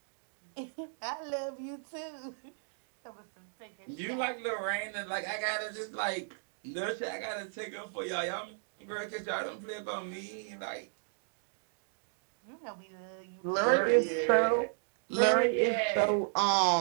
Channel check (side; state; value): left; silent; digital silence